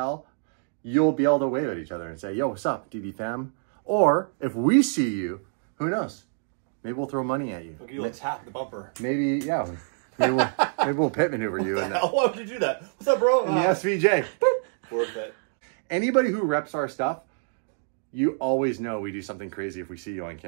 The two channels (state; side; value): silent; left; digital silence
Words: you'll be able to wave at each other and say, yo, what's up, DDE fam? Or if we see you, who knows? Maybe we'll throw money at you. Look, you'll tap the bumper. Maybe, yeah. Maybe we'll pit maneuver you. Why would you do that? What's up, bro? In the SVJ. Worth it. Anybody who reps our stuff, you always know we do something crazy if we see you on